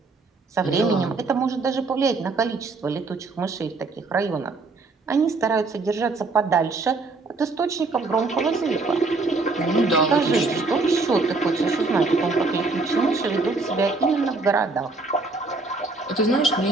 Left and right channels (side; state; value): left; quieter; 3.7 dB